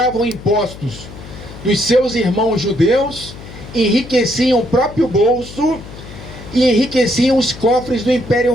impostos dos seus irmãos judeus, enriqueciam o próprio bolso e enriqueciam os cofres do Império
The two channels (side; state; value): left; noise; hum, 15 dB below the sound